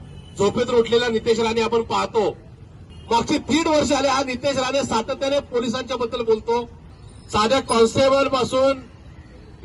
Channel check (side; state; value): both; identical; correlation 1.00